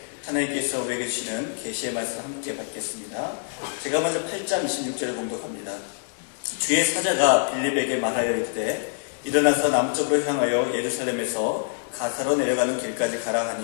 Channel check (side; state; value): right; silent; digital silence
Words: 하나님께서 우리에게 주시는 계시의 말씀을 함께 받겠습니다. 제가 먼저 8장 26절을 공독합니다. 주의 사자가 빌립에게 말하여 이르되 일어나서 남쪽으로 향하여 예루살렘에서 가사로 내려가는 길까지 가라